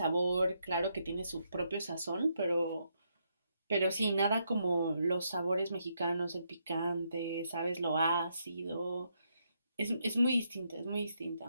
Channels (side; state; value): both; inverted; correlation -0.78